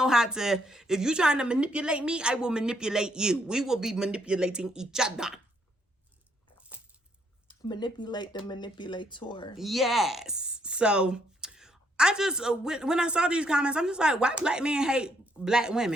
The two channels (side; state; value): both; normal; correlation 0.72